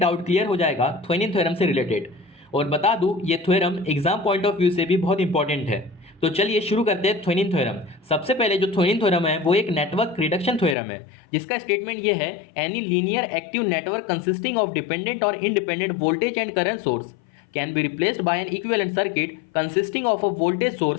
क्लियर हो जाएगा थेवेनिन थ्योरम से रिलेटेड. और बता दूं ये theorem exam point of view से भी बहुत इंपॉर्टेंट है. तो चलिए शुरू करते हैं थेवेनिन थ्योरम. सबसे पहले जो थेवेनिन थ्योरम है वो एक नेटवर्क रिडक्शन थ्योरम है, जिसका स्टेटमेंट ये है: any linear active network consisting of dependent और independent voltage and current source can be replaced by an equivalent circuit consisting of a voltage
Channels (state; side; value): drops out; right; at 10.8 s